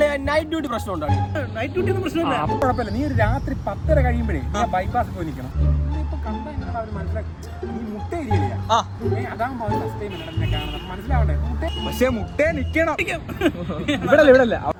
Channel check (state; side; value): identical; both; correlation 1.00